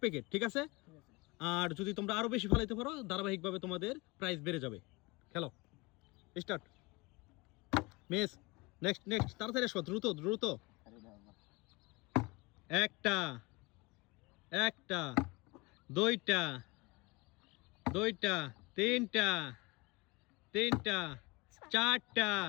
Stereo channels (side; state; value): right; quieter; 25.0 dB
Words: প্যাকেট, ঠিক আছে? আর যদি তোমরা আরো বেশি ফেলাইতে পারো ধারাবাহিকভাবে তোমাদের প্রাইস বেড়ে যাবে। খেলো, স্টার্ট। মিস, নেক্সট নেক্সট, তাড়াতাড়ি আসো, দ্রুত দ্রুত। একটা একটা, দুইটা দুইটা, তিনটা তিনটা, চারটা